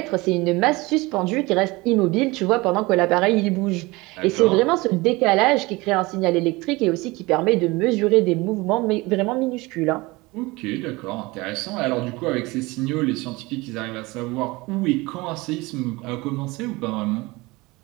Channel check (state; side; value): quieter; left; 22.7 dB